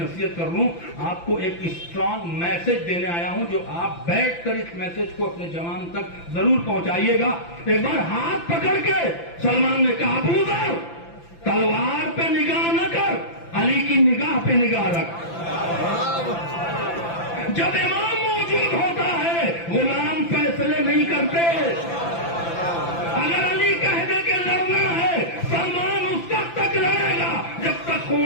کر لوں. آپ کو ایک اسٹرانگ میسج دینے آیا ہوں جو آپ بیٹھ کر اس میسج کو اپنے جوان تک ضرور پہنچائیے گا. ایک بار ہاتھ پکڑ کے سلمان نے کہا ابو ذر تلوار پہ نگاہ نہ کر، علی کی نگاہ پہ نگاہ رکھ. جب امام موجود ہوتا ہے غلام فیصلے نہیں کرتے. اگر علی کہہ دے کہ لڑنا ہے سلمان اس وقت تک لڑے گا جب تک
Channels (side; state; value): right; late; 5.9 ms